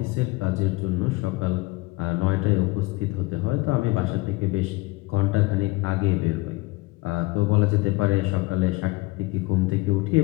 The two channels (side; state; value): right; quieter; 22.3 dB